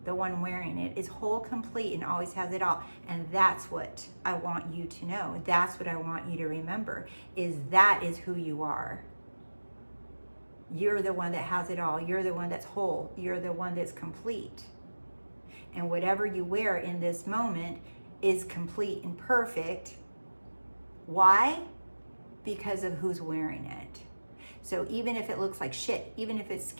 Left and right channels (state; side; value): inverted; both; correlation -1.00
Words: the one wearing it is whole, complete, and always has it all. And that's what I want you to know. That's what I want you to remember, is that is who you are. You're the one that has it all. You're the one that's whole. You're the one that's complete. And whatever you wear in this moment is complete and perfect. Why? Because of who's wearing it. So even if it looks like shit, even if it's